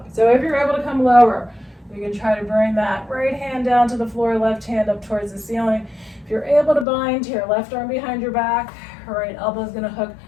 So if you're able to come lower, you can try to bring that right hand down to the floor, left hand up towards the ceiling. If you're able to bind to your left arm behind your back, right elbow is going to hook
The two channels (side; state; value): right; drops out; at 6.9 s